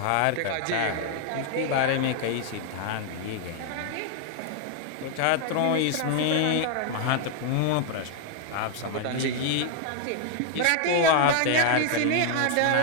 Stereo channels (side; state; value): both; different; correlation 0.00